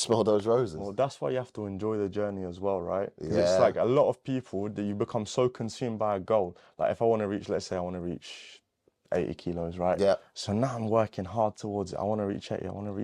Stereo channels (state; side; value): identical; both; correlation 1.00